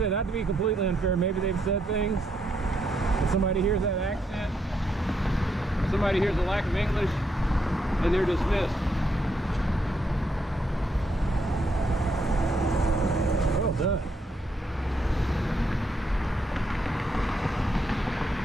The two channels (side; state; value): both; normal; correlation 0.77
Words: not to be completely unfair, maybe they've said things. If somebody hears that accent, if somebody hears the lack of English, and they're dismissed. Well done.